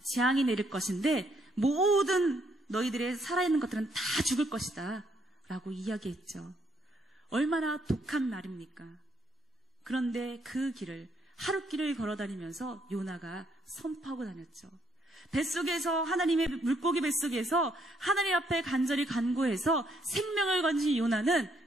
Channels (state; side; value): normal; both; correlation 0.71